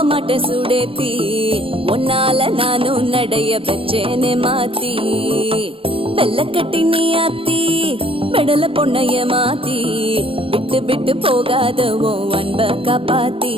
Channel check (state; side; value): late; left; 0.26 ms